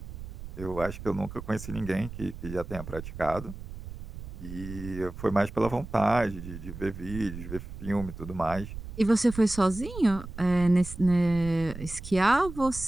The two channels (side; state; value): right; noise; rumble, 11 dB below the sound